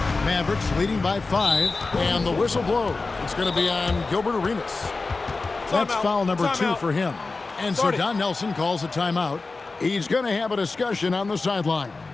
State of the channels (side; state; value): right; quieter; 3.8 dB